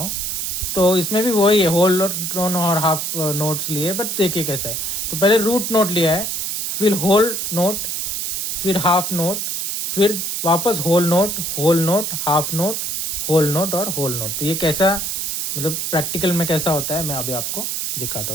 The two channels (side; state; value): right; noise; hiss, 2 dB below the sound